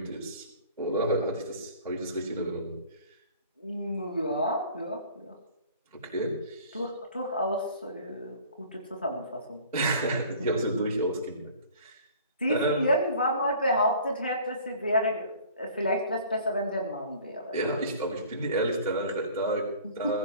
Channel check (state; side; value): inverted; both; correlation -0.48